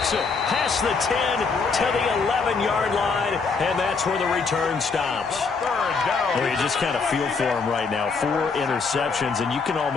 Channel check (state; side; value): quieter; right; 4.8 dB